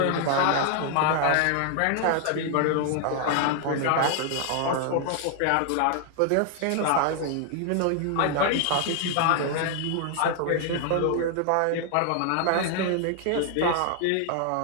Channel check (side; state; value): both; different; correlation 0.00